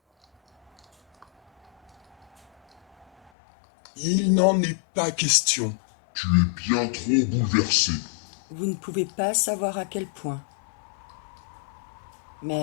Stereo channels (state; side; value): drops out; right; at 3.3 s